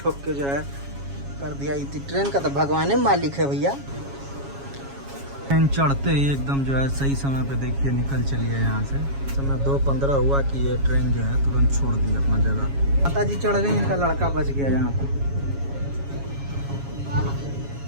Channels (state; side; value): late; left; 7.3 ms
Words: ठोक के जो है कर दिया। ट्रेन का तो भगवान मालिक है भैया। ट्रेन चढ़ते ही एकदम जो है सही समय पे देखिए निकल चलिए यहाँ से। समय 2:15 हुआ कि ये ट्रेन जो है तुरंत छोड़ दी अपना जगह। माता जी चढ़ गई, इनका लड़का बच गया यहाँ पे।